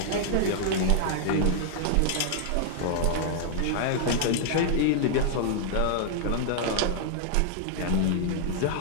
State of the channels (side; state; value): both; different; correlation -0.01